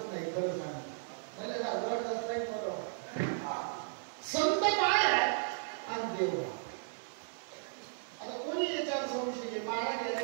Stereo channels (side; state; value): left; silent; digital silence